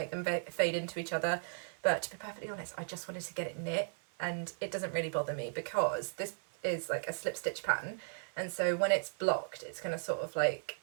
them fade into each other. But to be perfectly honest, I just wanted to get it knit, and it doesn't really bother me because this is like a slip stitch pattern, and so when it's blocked, it's going to sort of like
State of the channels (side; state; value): left; silent; 54 dB below the other